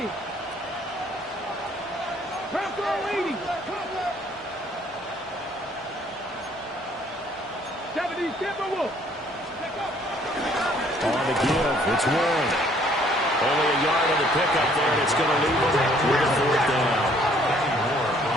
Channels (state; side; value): normal; both; correlation 0.61